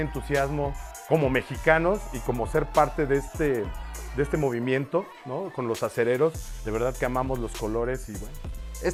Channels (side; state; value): both; identical; correlation 1.00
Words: como mexicanos y como ser parte de este movimiento, ¿no? Con los acereros, de verdad que amamos los colores y bueno.